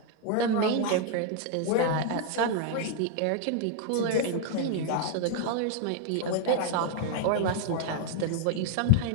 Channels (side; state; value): both; different; correlation 0.00